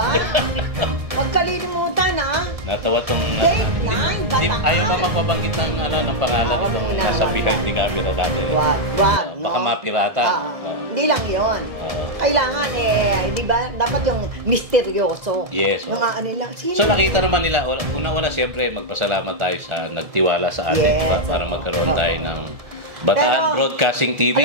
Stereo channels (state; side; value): late; left; 1.7 ms